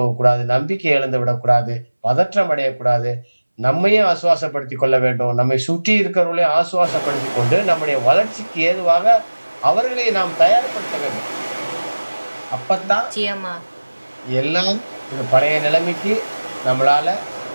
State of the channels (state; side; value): inverted; both; correlation -1.00